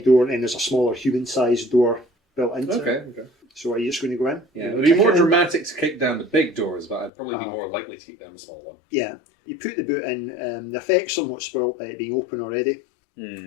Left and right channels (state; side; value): drops out; right; at 7.1 s